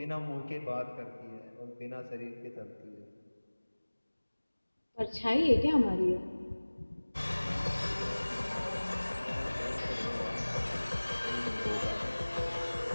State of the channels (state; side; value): inverted; both; correlation -1.00